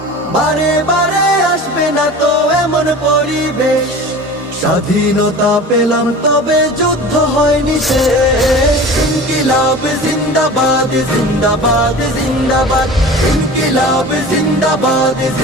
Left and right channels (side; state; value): both; normal; correlation 0.37